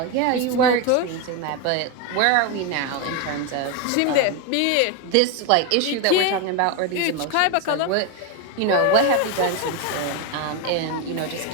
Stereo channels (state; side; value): different; both; correlation 0.02